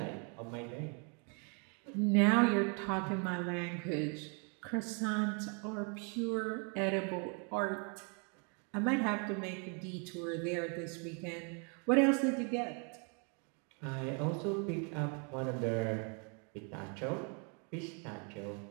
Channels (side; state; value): left; quieter; 37.0 dB